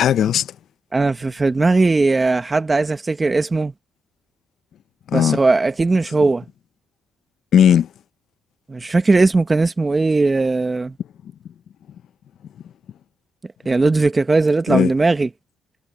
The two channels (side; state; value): both; normal; correlation 0.87